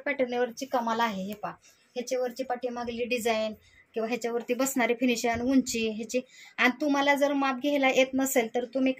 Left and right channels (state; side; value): identical; both; correlation 1.00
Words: कमाल आहे, हे पहा ह्याच्यावरची पाठीमागली डिझाईन किंवा ह्याच्यावरती बसणारी फिनिशिंग, उंची ह्याची। आणि तुम्हाला जर माप घ्यायला येत नसेल तर तुम्ही